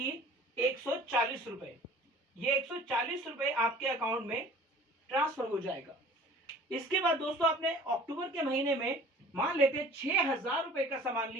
140 रुपए। ये 140 रुपए आपके अकाउंट में ट्रांसफर हो जाएगा। इसके बाद दोस्तों आपने अक्टूबर के महीने में मान लेते हैं 6,000 रुपए का सामान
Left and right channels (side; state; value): both; normal; correlation 0.47